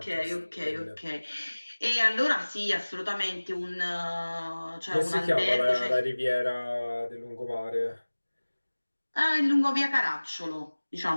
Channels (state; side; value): inverted; both; correlation -1.00